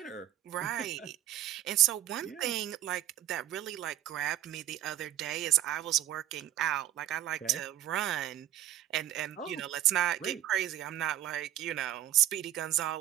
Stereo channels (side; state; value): left; quieter; 12.7 dB